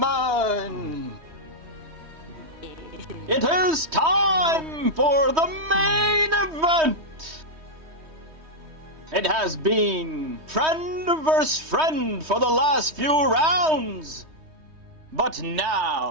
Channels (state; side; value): late; left; 3.2 ms